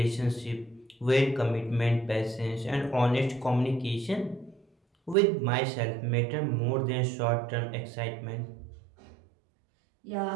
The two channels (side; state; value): left; drops out; at 5.2 s